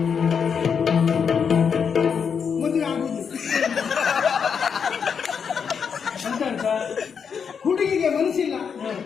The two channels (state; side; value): quieter; right; 6.6 dB